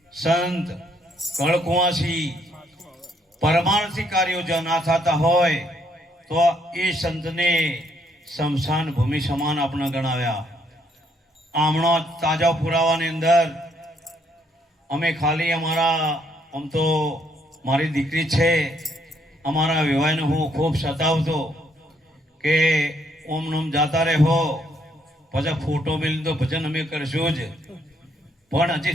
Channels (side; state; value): both; normal; correlation 0.70